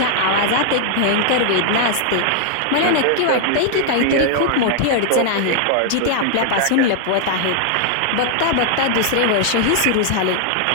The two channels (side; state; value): both; different; correlation 0.00